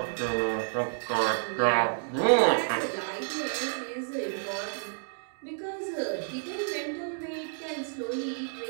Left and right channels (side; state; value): left; silent; digital silence